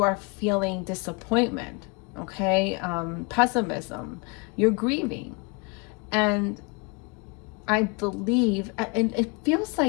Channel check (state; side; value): quieter; right; 31.2 dB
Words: are feeling disappointment, okay, pessimism, you're grieving. And I believe, and it feels